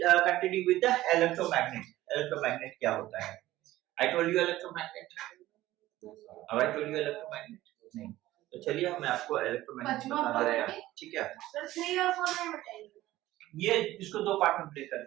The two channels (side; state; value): left; quieter; 15.9 dB